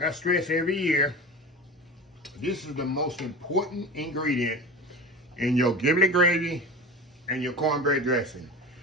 I stress every year, this is the most important ingredient in your giblet gravy and your cornbread dressing.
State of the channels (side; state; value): both; normal; correlation 0.31